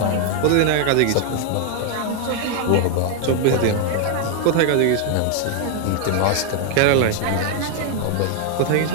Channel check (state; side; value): different; both; correlation 0.00